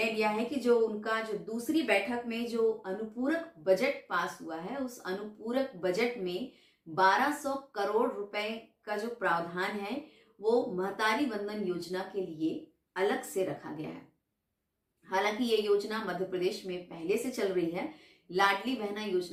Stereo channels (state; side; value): identical; both; correlation 1.00